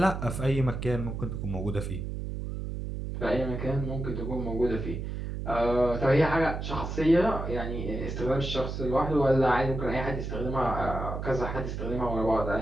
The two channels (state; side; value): noise; right; hum, 5 dB below the sound